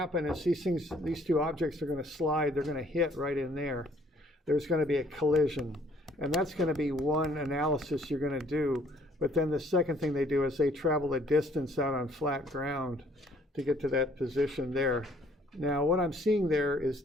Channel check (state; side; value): normal; both; correlation 0.60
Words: is these two objects are going to slide, they're going to hit right in there. There's going to be a collision, and that's going to be one analysis you're going to do. But then the second thing they do is they travel a distance out on flat ground to get to that position there. Now what I'm seeing there is